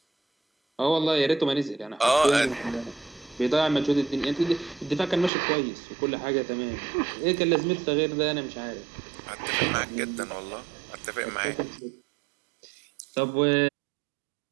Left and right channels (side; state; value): left; drops out; at 5.3 s